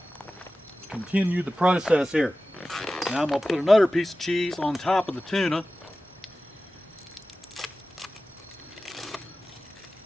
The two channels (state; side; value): normal; both; correlation 0.95